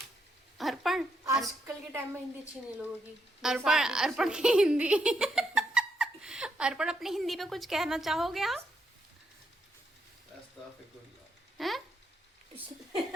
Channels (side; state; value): both; normal; correlation 0.78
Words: अर्पण, आजकल के टाइम में हिंदी अच्छी नहीं लोगों की। अर्पण की हिंदी अर्पण, अपनी हिंदी पे कुछ कहना चाहोगे आप? हैं?